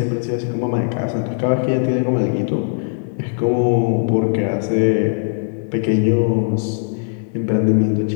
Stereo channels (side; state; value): right; silent; digital silence